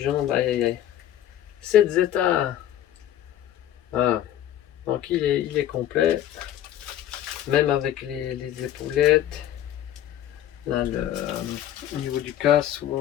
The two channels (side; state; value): right; quieter; 11.7 dB